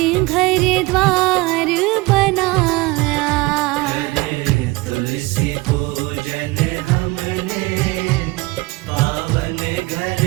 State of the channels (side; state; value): left; quieter; 22.5 dB